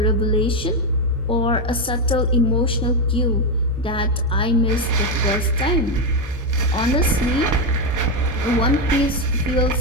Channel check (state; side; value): normal; both; correlation 0.07